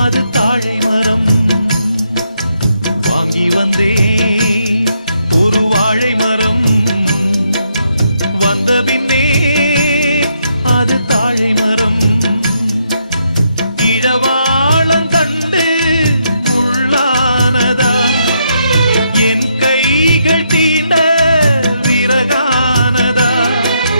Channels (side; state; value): both; inverted; correlation -0.77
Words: தாழை மரம் வாங்கி வந்தே ஒரு வாழை மரம் வந்த பின்னே அது தாழை மரம் இழவாளங்கண்டு உள்ளானதா என் கைகள் தீண்ட விறகானதா